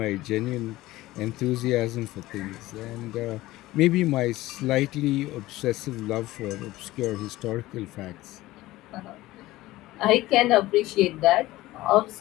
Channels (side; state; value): right; quieter; 17.5 dB